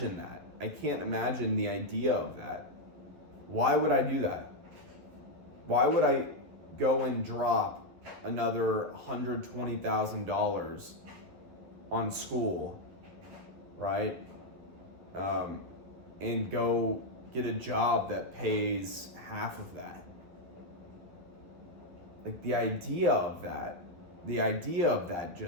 that. I can't imagine the idea of that. Why would I do that? Why would I go and drop another $120,000 on school, right? And go get a job that pays half of that. Like the idea of that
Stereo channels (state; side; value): late; left; 12 ms